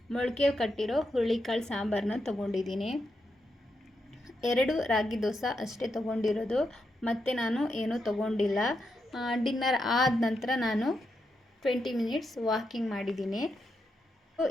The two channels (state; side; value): normal; both; correlation 0.84